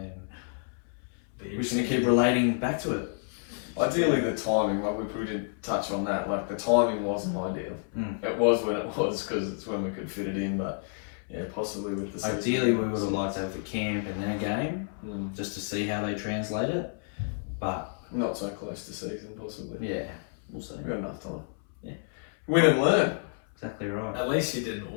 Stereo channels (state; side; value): silent; right; 58 dB below the other